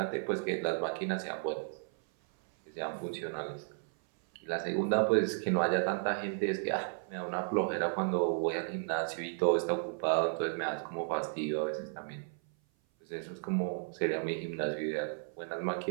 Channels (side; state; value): left; silent; 55 dB below the other